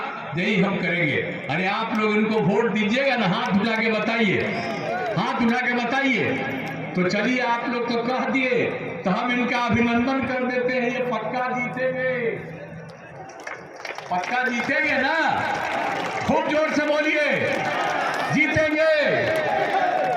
यही हम करेंगे। अरे आप लोग इनको वोट दीजिएगा ना, हाथ उठा के बताइए, हाथ उठा के बताइए। तो चलिए आप लोग तो कह दिए तो हम इनका अभिनंदन कर देते हैं। ये पक्का जीतेंगे, पक्का जीतेंगे ना? खूब जोर से बोलिए, जीतेंगे।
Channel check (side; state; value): both; identical; correlation 1.00